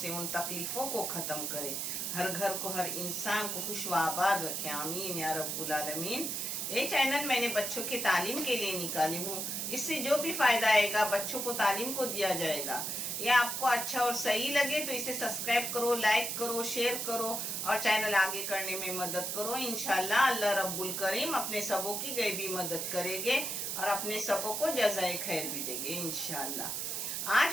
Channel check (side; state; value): right; noise; hiss, 2 dB below the sound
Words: उन तकलीफों को खत्म करे, हर घर को, हर इंसान को खुश व आबाद रखे। आमीन या रब्बुल आलमीन। ये चैनल मैंने बच्चों की तालीम के लिए निकाली हूँ। इससे जो भी फायदा आएगा बच्चों को तालीम को दिया जाएगा। ये आपको अच्छा और सही लगे तो इसे सब्सक्राइब करो, लाइक करो, शेयर करो और चैनल आगे करने में मदद करो। इंशाल्लाह अल्लाह रब्बुल करीम अपने सबों की गैबी मदद करेंगे और अपने सबों को जज़ाए खैर भी देंगे इंशाल्लाह।